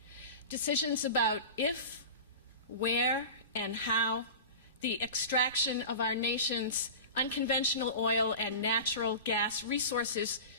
Decisions about if, where, and how the extraction of our nation's unconventional oil and natural gas resources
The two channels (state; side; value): inverted; both; correlation -0.32